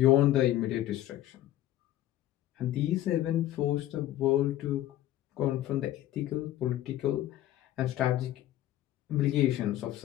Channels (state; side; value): quieter; right; 13.9 dB